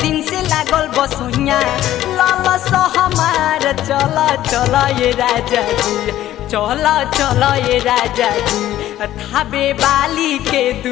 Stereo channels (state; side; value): quieter; right; 13.3 dB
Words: दिन से लागल बसुइया ललस हमार चला चला ये राजा जी चला चला ये राजा जी थाबे वाली के